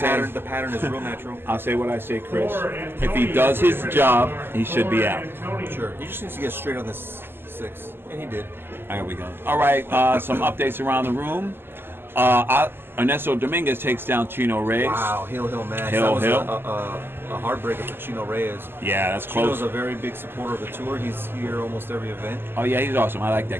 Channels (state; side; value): late; left; 0.11 ms